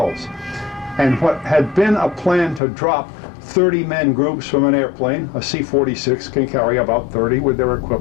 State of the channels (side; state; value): right; drops out; at 2.6 s